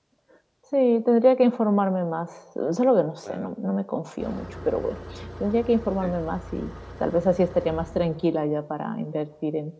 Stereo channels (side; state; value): both; identical; correlation 1.00